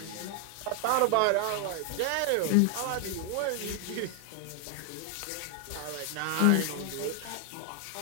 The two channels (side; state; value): both; different; correlation 0.00